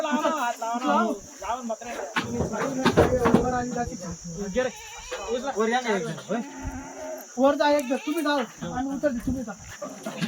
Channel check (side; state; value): both; identical; correlation 1.00